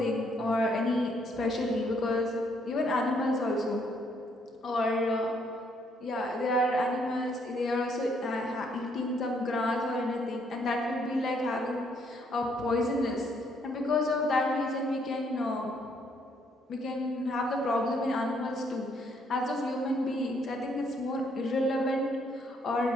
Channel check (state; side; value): normal; both; correlation 0.69